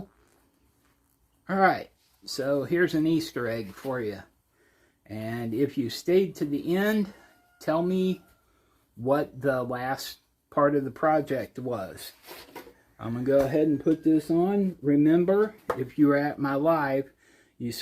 Alright, so here's an Easter egg for you. And if you stayed to the end, tell me what the last part of the project was. I'm going to go ahead and put this on. Remember, if you were at my live, you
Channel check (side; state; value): both; identical; correlation 1.00